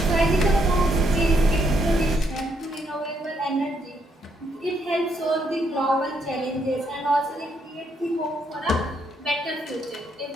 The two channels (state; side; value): normal; both; correlation 0.75